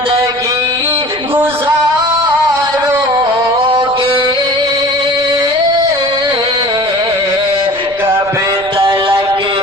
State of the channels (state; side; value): noise; right; rumble, 22 dB below the sound